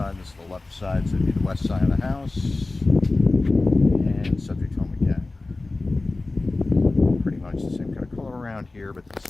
this is the left side, so it'd be the west side of the house, and subject home again. Pretty much the same kind of color around here, but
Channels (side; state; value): right; quieter; 3.2 dB